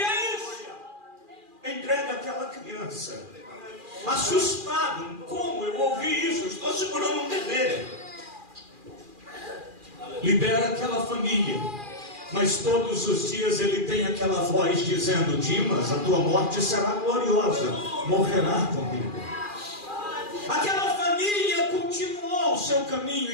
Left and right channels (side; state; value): left; late; 2.4 ms